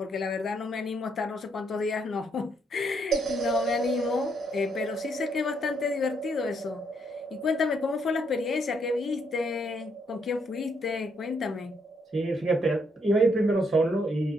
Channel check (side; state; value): both; normal; correlation 0.73